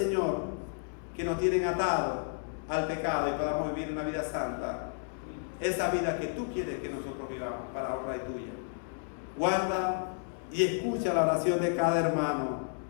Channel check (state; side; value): silent; right; digital silence